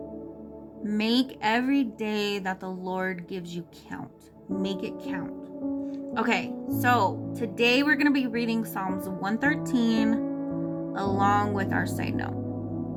Make every day that the Lord gives you count. Make it count. Okay, so today we're going to be reading Psalms 113 along with our side note.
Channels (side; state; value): both; identical; correlation 1.00